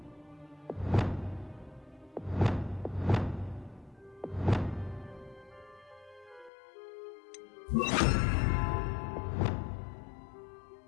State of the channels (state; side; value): drops out; right; at 6.5 s